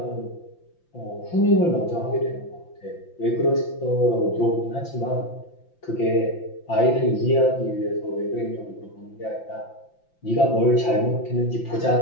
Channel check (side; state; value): right; late; 5.8 ms